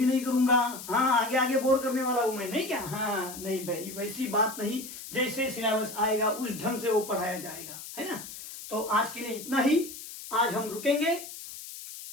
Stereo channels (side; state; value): left; noise; hiss, 12 dB below the sound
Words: नहीं करूंगा। हाँ, आगे आगे बोर करने वाला हूं मैं, नहीं क्या? हाँ नहीं भाई, वैसी बात नहीं, जैसे सिलेबस आएगा उस ढंग से वो पढ़ाया जाएगा, है ना। तो आज के लिए इतना ही, आज हम रुकेंगे,